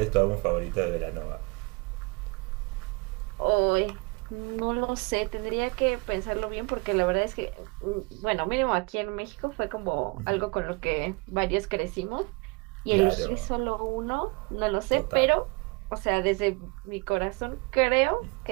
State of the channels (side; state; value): left; quieter; 28.5 dB